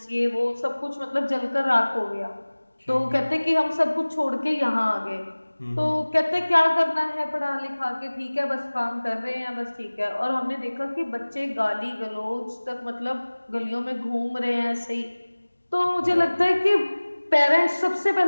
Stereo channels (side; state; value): both; inverted; correlation -1.00